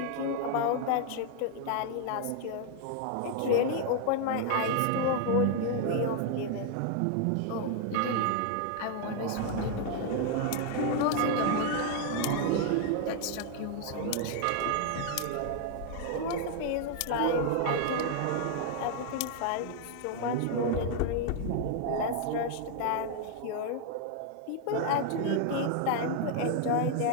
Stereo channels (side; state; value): both; different; correlation 0.00